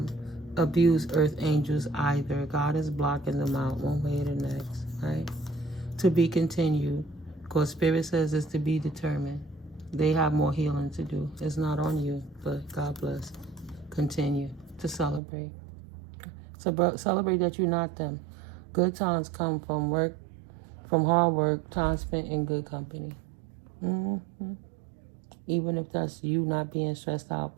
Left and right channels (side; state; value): left; drops out; at 15.2 s